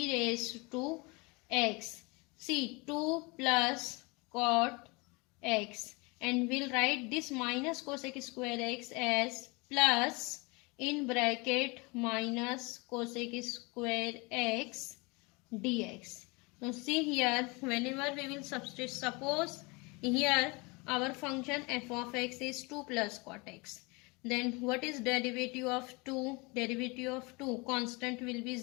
raised to x. See, 2 plus cot x, and we'll write this minus cosec square x as plus in bracket minus cosec square x dx. Now see here, whenever we will substitute, suppose here our function f of x is 2 plus cot x. Then what is derivative of 2? Derivative of 2, constant will be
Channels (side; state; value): right; quieter; 27.6 dB